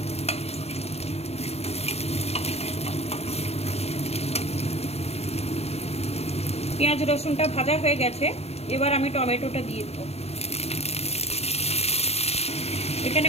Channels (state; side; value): late; right; 0.30 ms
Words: পেঁয়াজ রসুনটা ভাজা হয়ে গেছে, এবার আমি টমেটোটা দিয়ে দেবো। এখানে